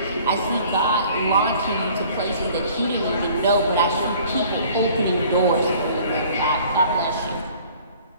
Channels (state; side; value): inverted; both; correlation -0.52